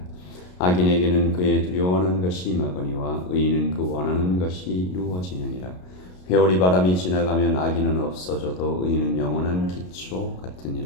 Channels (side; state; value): right; late; 33 ms